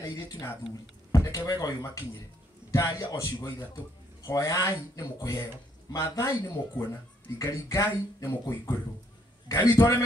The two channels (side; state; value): both; normal; correlation 0.70